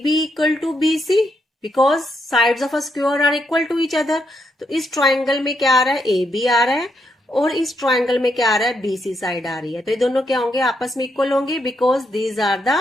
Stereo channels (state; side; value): normal; both; correlation 0.78